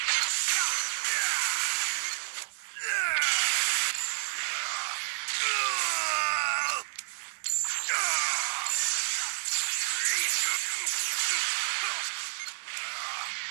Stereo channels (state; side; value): silent; left; digital silence